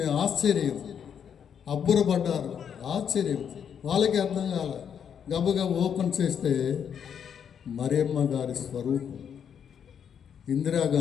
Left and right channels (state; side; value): quieter; right; 8.0 dB